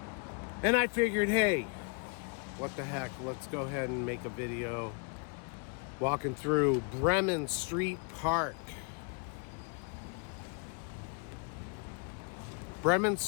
And I figured, hey, what the heck, let's go ahead and make a video walking through Bremen Street Park. Bremen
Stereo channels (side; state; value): right; quieter; 35.6 dB